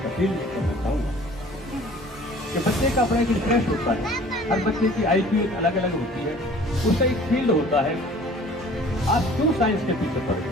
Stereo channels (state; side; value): normal; both; correlation 0.49